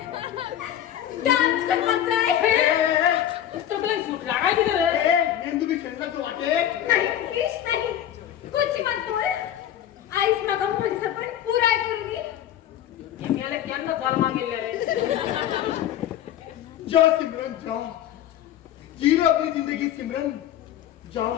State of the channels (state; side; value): quieter; right; 11.1 dB